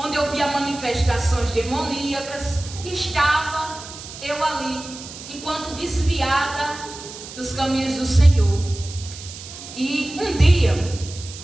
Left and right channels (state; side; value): noise; right; hiss, 13 dB below the sound